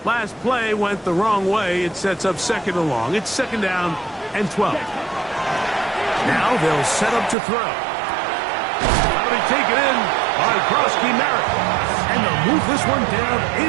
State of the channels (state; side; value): drops out; left; at 7.4 s